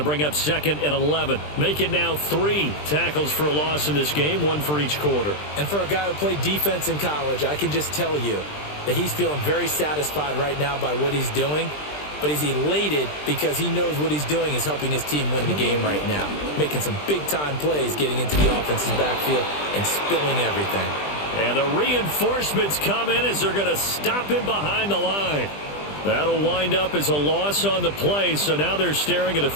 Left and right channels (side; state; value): right; late; 20 ms